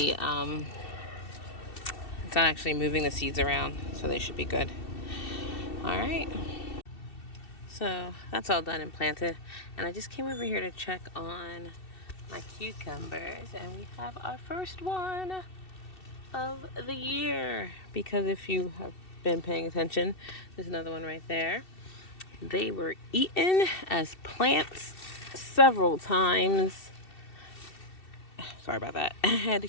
the seeds around, so they should be good. All right. So that's all done and planted. And I just came over here to check on my cucumbers, and we have our first one of the year. Because if you have been paying attention, there's another one right there. They were eaten as plants several times. Sorry about that. I had to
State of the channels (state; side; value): late; right; 2.7 ms